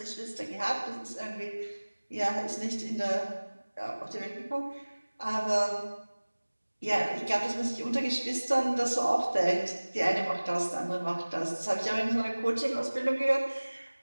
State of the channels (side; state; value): both; inverted; correlation -1.00